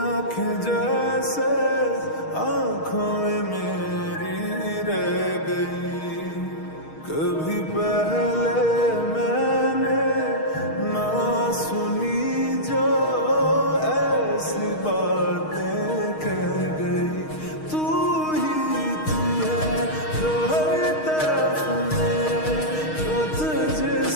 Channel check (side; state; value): right; late; 6.4 ms